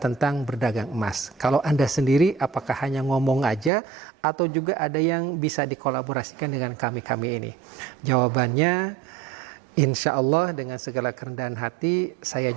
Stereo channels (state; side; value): drops out; left; at 3.7 s